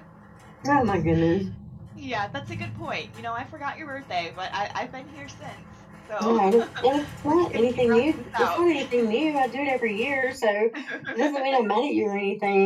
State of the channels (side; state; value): both; identical; correlation 1.00